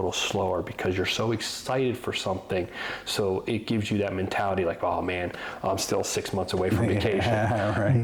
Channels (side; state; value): both; identical; correlation 1.00